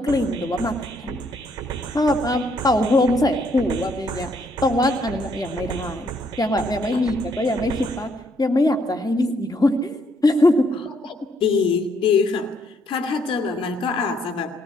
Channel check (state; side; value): normal; both; correlation 0.71